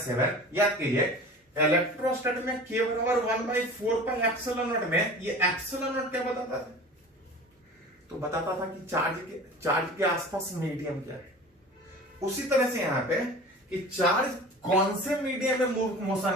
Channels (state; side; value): normal; both; correlation 0.38